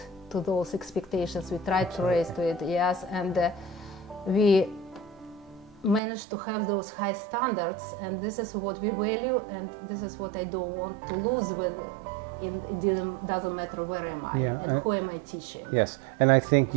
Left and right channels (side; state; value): left; drops out; at 6.0 s